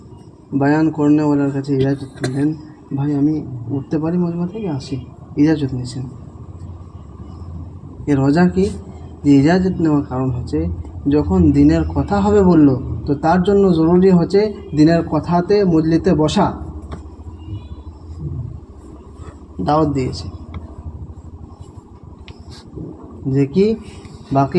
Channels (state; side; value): identical; both; correlation 1.00